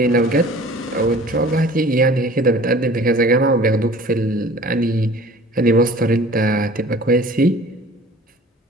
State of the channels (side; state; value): both; normal; correlation 0.47